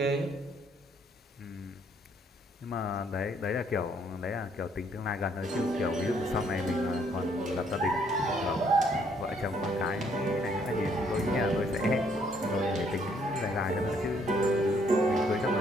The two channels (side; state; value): both; normal; correlation 0.67